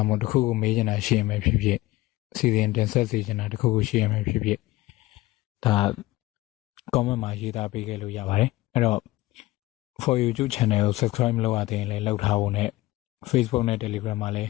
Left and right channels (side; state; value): right; quieter; 18.6 dB